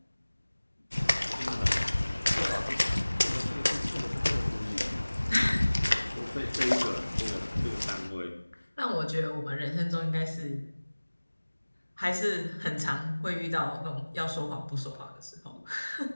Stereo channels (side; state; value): both; inverted; correlation -1.00